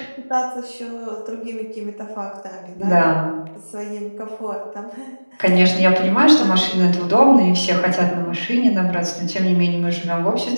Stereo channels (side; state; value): both; inverted; correlation -1.00